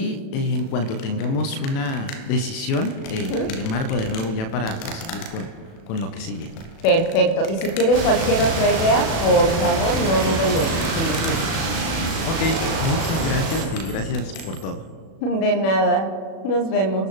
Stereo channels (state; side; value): late; right; 36 ms